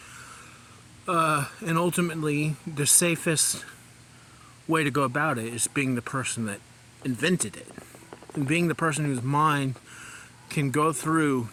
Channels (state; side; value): identical; both; correlation 1.00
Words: And ultimately, the safest way to go about it is being the person that invented it, and being the person whose mind can go through